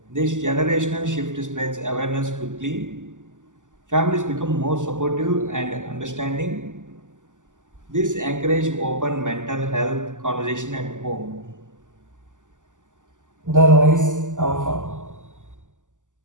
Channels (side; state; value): left; late; 0.87 ms